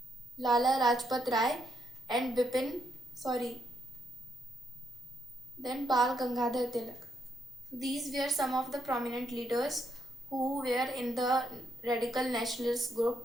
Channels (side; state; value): both; normal; correlation 0.77